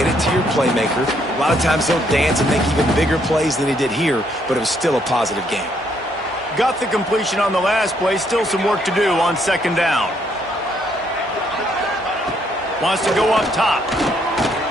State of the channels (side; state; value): both; normal; correlation 0.71